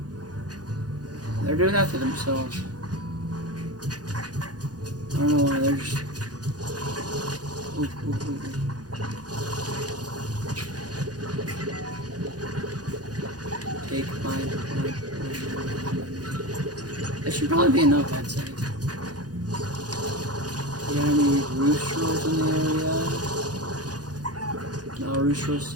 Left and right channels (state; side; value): late; left; 0.69 ms